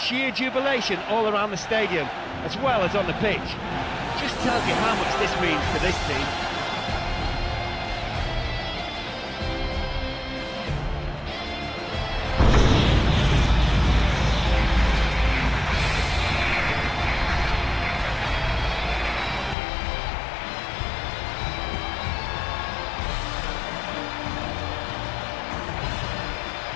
jubilation all around the stadium, as well as on the pitch, just tells you how much this means to this team.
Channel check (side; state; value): right; drops out; at 19.6 s